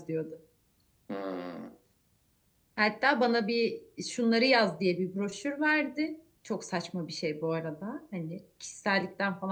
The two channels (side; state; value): both; identical; correlation 1.00